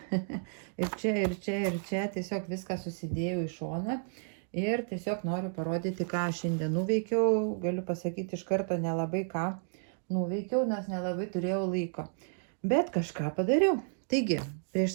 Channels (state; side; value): silent; left; digital silence